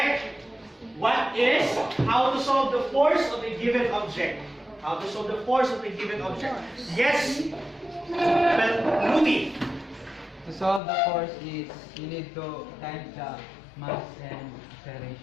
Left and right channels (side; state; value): right; drops out; at 10.8 s